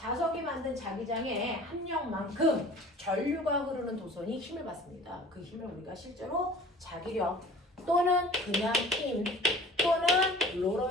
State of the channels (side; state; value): both; normal; correlation 0.46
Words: 만든 자기장의 합력만큼 전류가 흐르는 도선이 힘을 받습니다. 그 힘을 우리가 실제로 자기력 또는 그냥 힘 또는